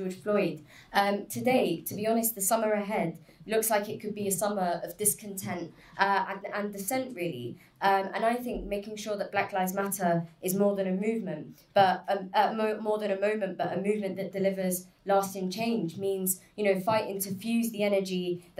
Floyd. Today, to be honest, the summer ahead looks like it could be a summer of discontent and dissent, really. And I think making sure that Black Lives Matter is more than a movement, but more than a moment, but a movement that delivers lasting change means, you know, fighting to fuse the energy,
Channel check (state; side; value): identical; both; correlation 1.00